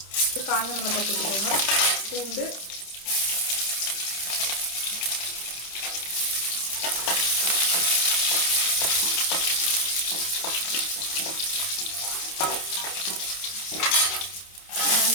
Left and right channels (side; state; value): right; late; 29 ms